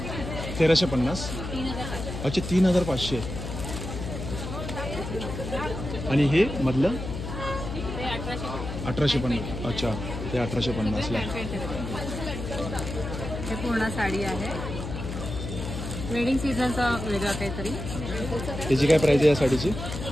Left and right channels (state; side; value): noise; left; hum, 7 dB below the sound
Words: 1350. अच्छा 3500. आणि हे मधलं 1850. अच्छा ते 1850ला. हे पूर्ण साडी आहे. वेडिंग सीझनचा वेगळा काहीतरी. त्याची काय प्राइस आहे या साडीची?